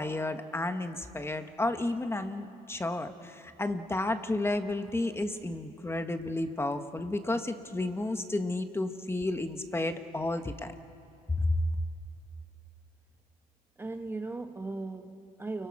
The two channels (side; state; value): both; normal; correlation 0.85